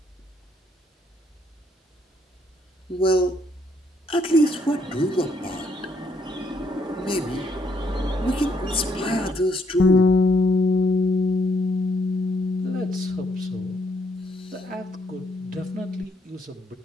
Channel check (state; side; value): normal; both; correlation 0.72